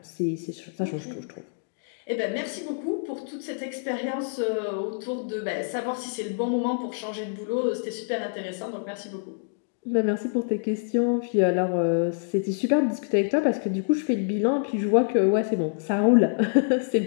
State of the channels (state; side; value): silent; right; digital silence